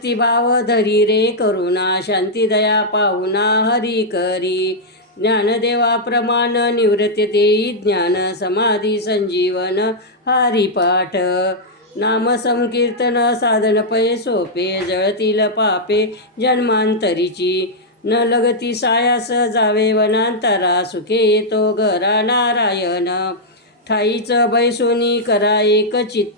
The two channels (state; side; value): normal; both; correlation -0.05